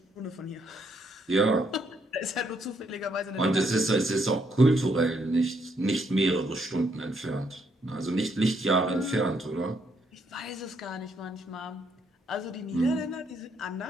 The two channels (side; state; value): both; normal; correlation 0.73